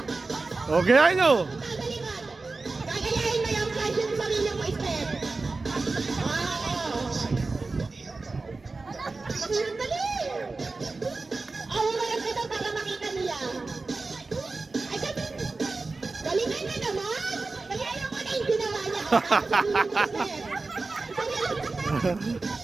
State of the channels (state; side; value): quieter; left; 3.7 dB